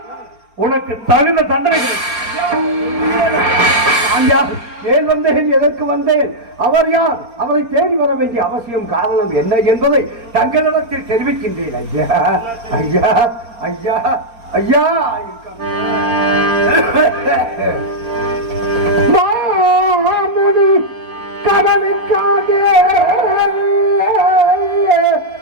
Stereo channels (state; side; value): late; left; 4.3 ms